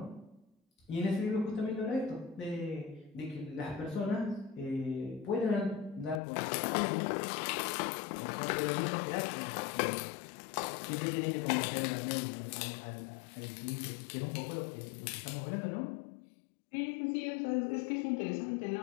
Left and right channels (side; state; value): right; drops out; at 6.2 s